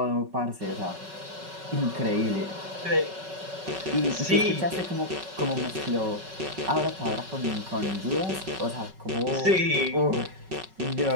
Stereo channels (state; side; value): late; left; 5.3 ms